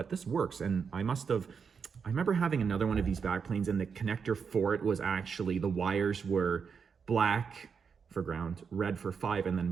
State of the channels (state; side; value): quieter; left; 6.1 dB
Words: this works. And I remember having another one of these backplanes, and the connector for it was actually, the wires were black for ground, red for 5, and then